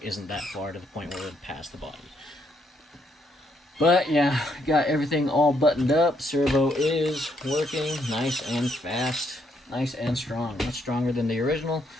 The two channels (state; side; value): normal; both; correlation 0.73